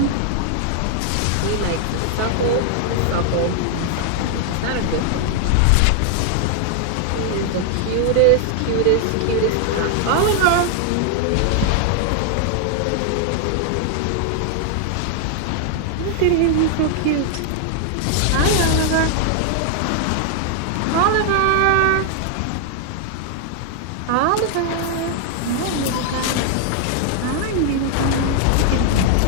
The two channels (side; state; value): both; different; correlation 0.00